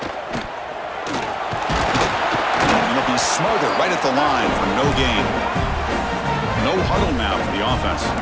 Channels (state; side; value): identical; both; correlation 1.00